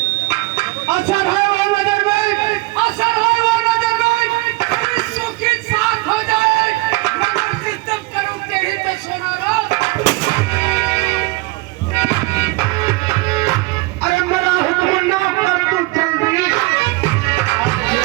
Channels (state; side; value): quieter; left; 22.5 dB